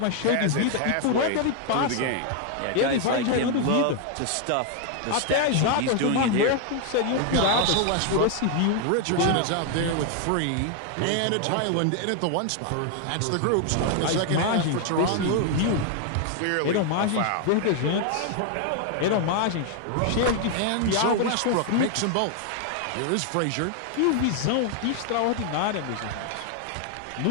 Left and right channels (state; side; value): different; both; correlation 0.00